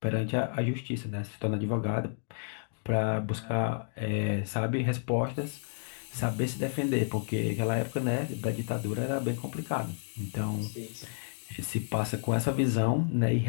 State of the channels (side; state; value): right; silent; digital silence